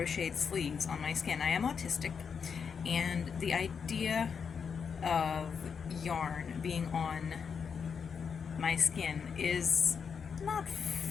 sleeves on my skin. I am autistic, and the idea of yarn being on my skin is not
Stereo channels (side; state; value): right; quieter; 6.4 dB